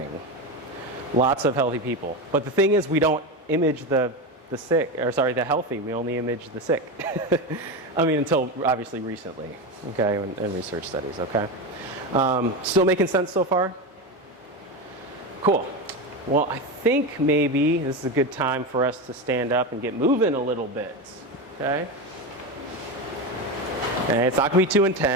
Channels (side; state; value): both; normal; correlation 0.18